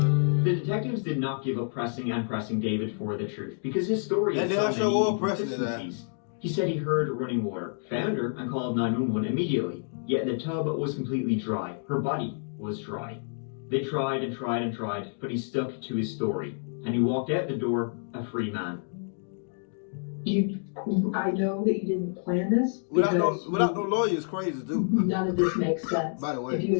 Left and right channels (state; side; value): silent; right; digital silence